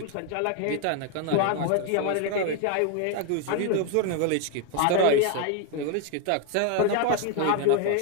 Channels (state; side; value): different; both; correlation 0.01